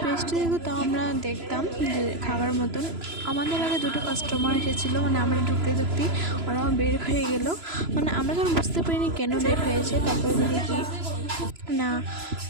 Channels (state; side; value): late; left; 3.0 ms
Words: পেস্ট্রি দেখতো তাও আমরা দেখতাম যে খাওয়ার মতন। আমাদের আগে দুটো কাস্টমার এসেছিলো, মানে আমরা ঢুকতে ওরাও বের হয়ে গেল। মানে আমরা তখন বুঝতে পারিনি কেন বের হয়েছে। তারপরে দেখি কি না